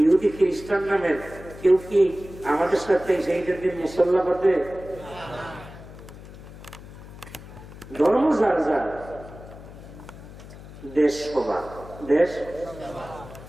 ইহুদি খ্রিস্টান নামের কেউ কি আমাদের সাথে সেইটার দিন মুসল্লা পাতে? ধর্ম যার যার, দেশ সবার। দেশ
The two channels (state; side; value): noise; left; hum, 16 dB below the sound